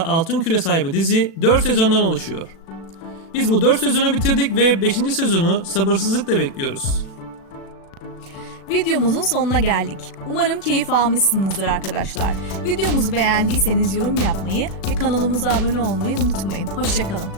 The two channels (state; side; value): late; right; 36 ms